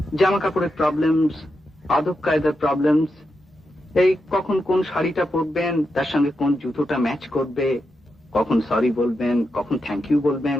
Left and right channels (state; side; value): normal; both; correlation 0.86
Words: জামা কাপড়ের প্রবলেমস, আদব কায়দার প্রবলেমস, এই কখন কোন শাড়িটা পরবেন, তার সঙ্গে কোন জুতোটা ম্যাচ করবে, কখন সরি বলবেন, কখন থ্যাংক ইউ বলবেন,